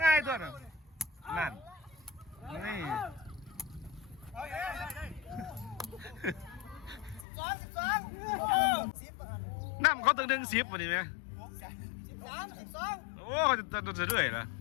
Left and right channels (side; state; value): right; drops out; at 7.2 s